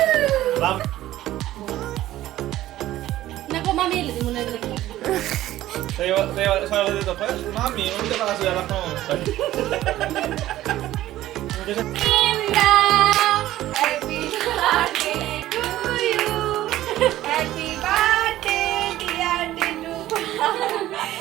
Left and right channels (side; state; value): left; quieter; 14.5 dB